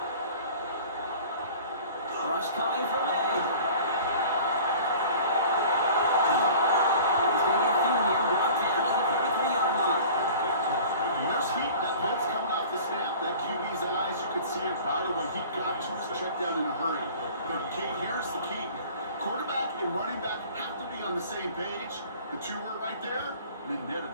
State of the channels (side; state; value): both; inverted; correlation -0.44